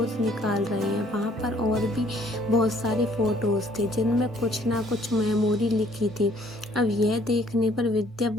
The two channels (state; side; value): normal; both; correlation 0.60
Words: निकाल रहे हैं। वहाँ पर और भी बहुत सारे फ़ोटोज़ थे जिनमें कुछ ना कुछ मेमोरी लिखी थी। अब यह देखने पर विद्या